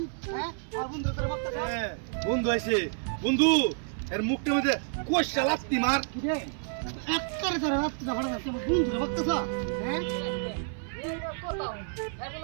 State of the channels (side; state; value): left; silent; 58 dB below the other